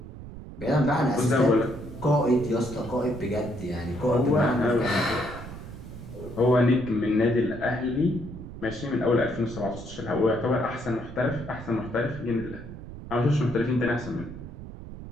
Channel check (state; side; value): noise; right; rumble, 12 dB below the sound